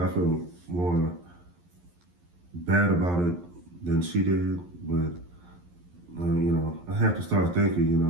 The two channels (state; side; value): late; left; 11 ms